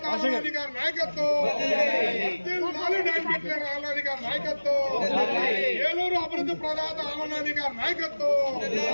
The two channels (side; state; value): both; inverted; correlation -1.00